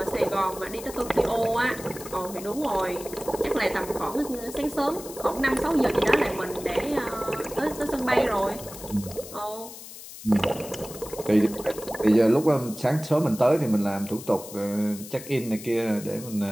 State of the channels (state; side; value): noise; left; hiss, 14 dB below the sound